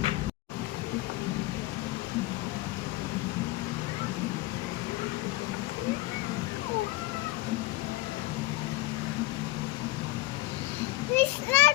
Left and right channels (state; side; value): quieter; right; 18.2 dB